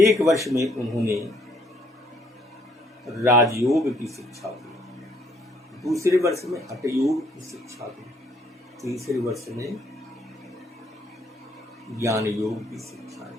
1 वर्ष में उन्होंने राजयोग की शिक्षा दी, दूसरे वर्ष में हठयोग की शिक्षा दी, तीसरे वर्ष में ज्ञान योग की शिक्षा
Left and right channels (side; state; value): both; normal; correlation 0.66